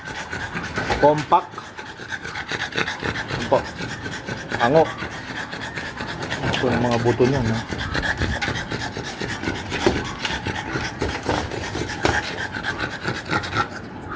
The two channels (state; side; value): identical; both; correlation 1.00